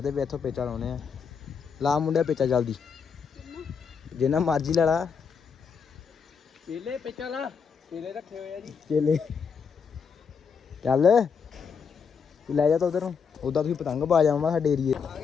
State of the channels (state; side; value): quieter; right; 6.2 dB